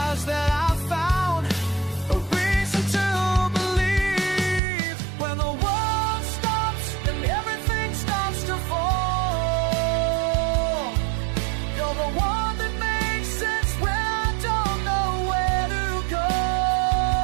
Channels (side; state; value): left; drops out; at 4.6 s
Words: that I found a reason to believe. When the world stops and everything starts to fall, you're the one that makes sense when I don't know where to go.